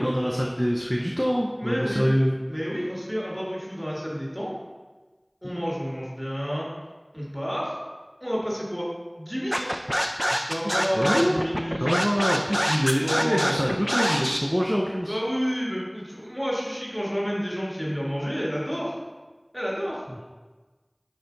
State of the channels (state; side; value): identical; both; correlation 1.00